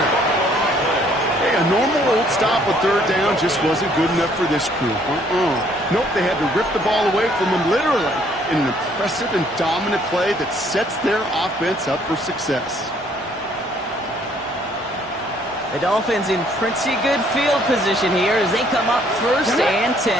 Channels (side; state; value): both; normal; correlation 0.63